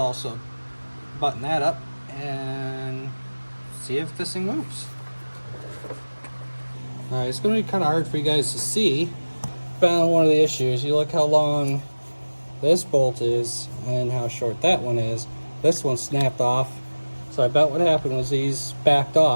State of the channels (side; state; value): both; inverted; correlation -1.00